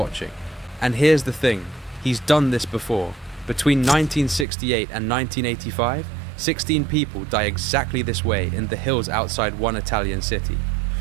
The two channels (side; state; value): left; drops out; at 4.5 s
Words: And here's the thing, he's done this before. Between 1968 and 1985, 16 people die exactly this way in the hills outside one Italian city.